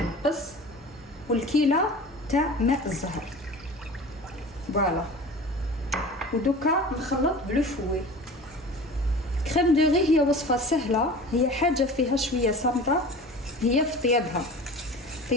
والكيله تاع ماء الزهر. فوالا ودوكا نخلط بلو فوي. كريم دو ري هي وصفه سهله، هي حاجه فيها شويه صامته، هي في طيابها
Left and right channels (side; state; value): both; normal; correlation 0.38